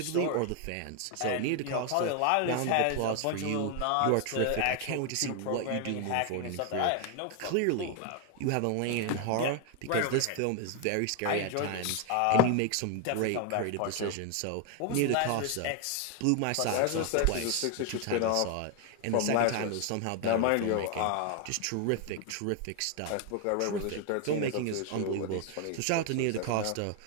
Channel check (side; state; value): both; different; correlation 0.01